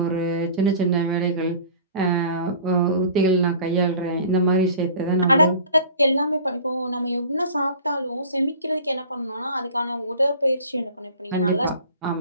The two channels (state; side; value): inverted; both; correlation -0.44